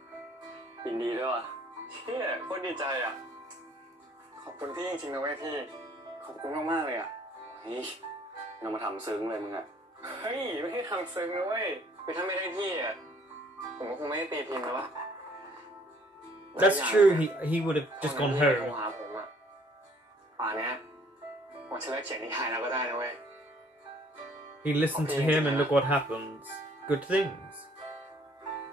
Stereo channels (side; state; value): both; normal; correlation 0.60